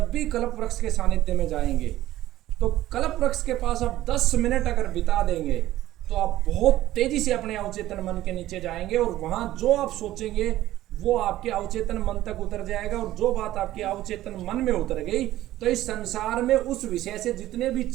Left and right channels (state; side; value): quieter; left; 14.7 dB